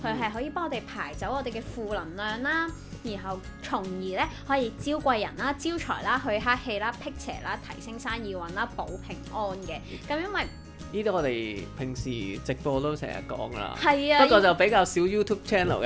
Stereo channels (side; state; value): both; identical; correlation 1.00